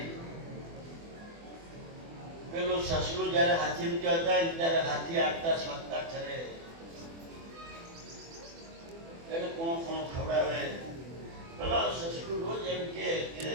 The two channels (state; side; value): late; left; 24 ms